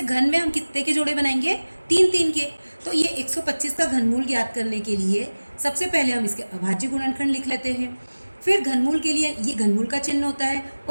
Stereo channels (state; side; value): inverted; both; correlation -1.00